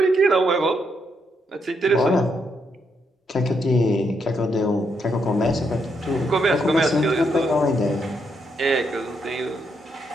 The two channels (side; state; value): both; normal; correlation 0.78